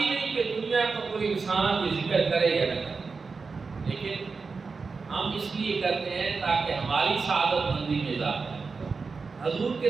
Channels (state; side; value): quieter; left; 4.6 dB